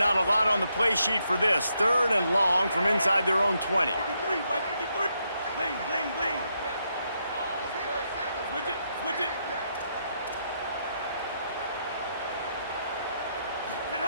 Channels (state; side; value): inverted; both; correlation -0.79